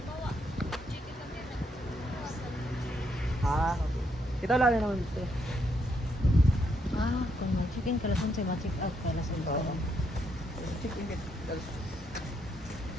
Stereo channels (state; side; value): normal; both; correlation 0.76